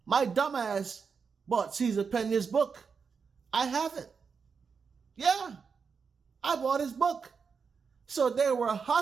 My dumbass bought Cesar Pina's book. I have it. Yeah, I bought his book. So they were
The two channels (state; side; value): quieter; left; 5.7 dB